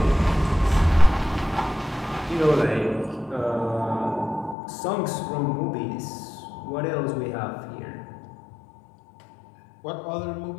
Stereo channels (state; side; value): drops out; right; at 4.5 s